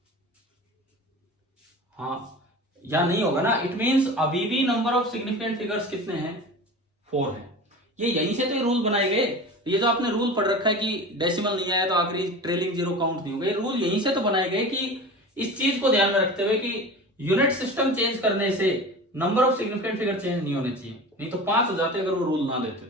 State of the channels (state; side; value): normal; both; correlation 0.33